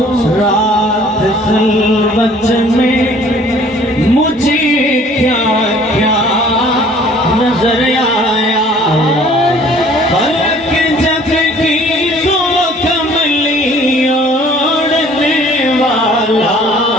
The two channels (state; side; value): normal; both; correlation 0.54